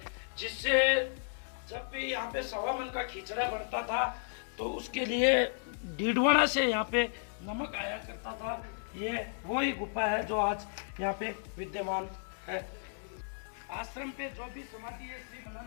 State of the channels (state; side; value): silent; right; digital silence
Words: जिससे जब भी यहाँ पे 1.25 मन का खिचड़ा बनता था तो उसके लिए डीडवाना से यहाँ पे नमक आया करता था। ये वही गुफा है जो आज यहाँ पे विद्यमान है। आश्रम पे जो भी समाधि है श्री